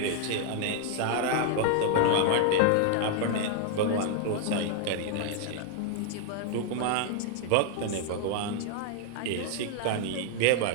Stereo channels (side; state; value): both; different; correlation 0.00